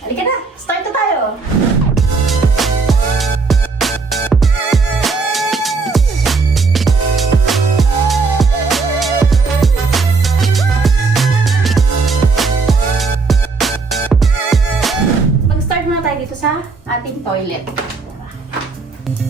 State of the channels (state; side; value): quieter; left; 4.3 dB